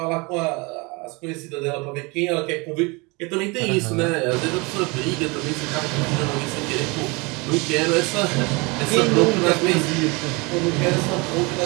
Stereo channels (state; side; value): quieter; left; 27.3 dB